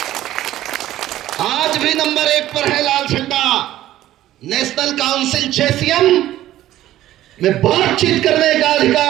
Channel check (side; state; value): left; quieter; 13.9 dB